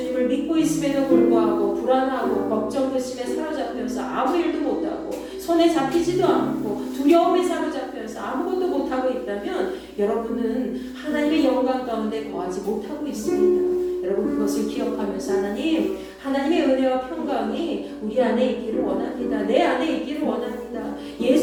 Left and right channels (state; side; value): identical; both; correlation 1.00